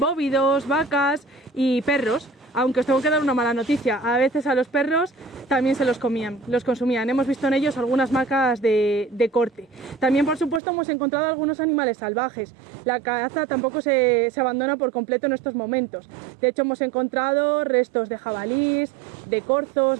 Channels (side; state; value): left; drops out; at 10.6 s